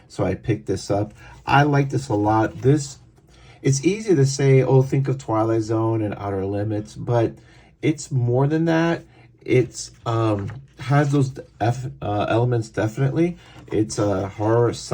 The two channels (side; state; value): both; identical; correlation 1.00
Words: so I picked this up. I like this a lot. It's easy to say, oh, think of Twilight Zone and Outer Limits, but it's more than that. It's has those elements, definitely. It's a horror